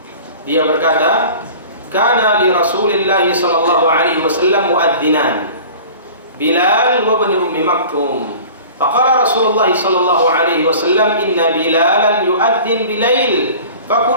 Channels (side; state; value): both; inverted; correlation -0.42